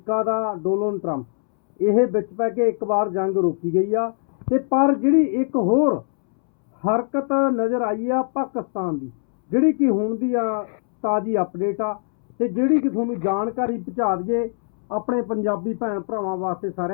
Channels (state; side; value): silent; right; 64 dB below the other